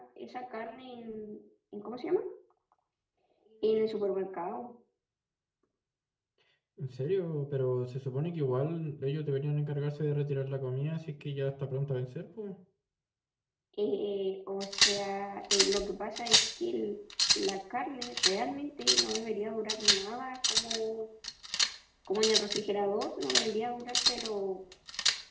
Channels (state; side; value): identical; both; correlation 1.00